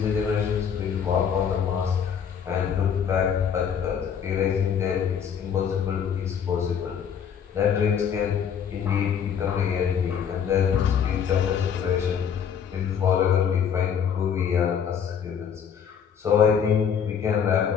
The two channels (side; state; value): right; quieter; 7.7 dB